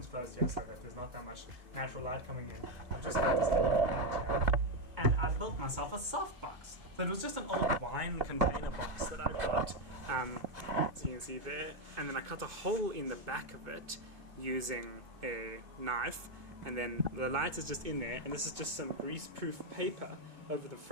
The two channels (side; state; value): left; late; 2.4 ms